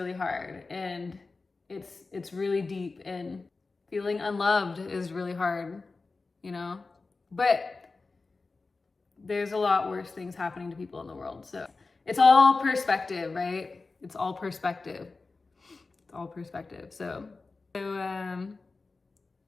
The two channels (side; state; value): right; quieter; 3.9 dB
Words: hard, and it's really deep, and feeling unloved is really hard, you know. But there's a lot worse things happening to people in the world. So it's all perspective, right? It's all perspective. It's all perspective. So